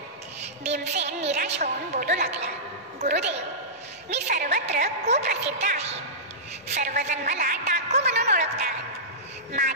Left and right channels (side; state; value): both; normal; correlation -0.15